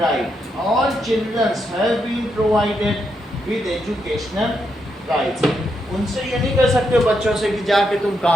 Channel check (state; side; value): normal; both; correlation 0.81